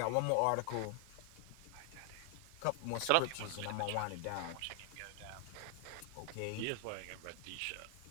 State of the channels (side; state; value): both; different; correlation 0.00